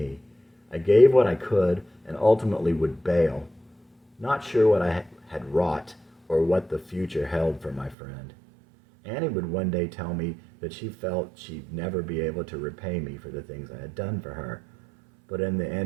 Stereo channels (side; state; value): left; drops out; at 8.0 s